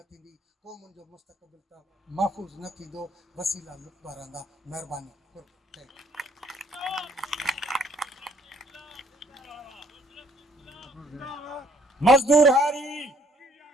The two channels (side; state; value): both; normal; correlation 0.62